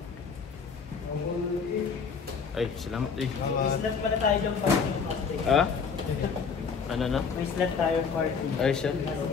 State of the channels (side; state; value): right; quieter; 5.7 dB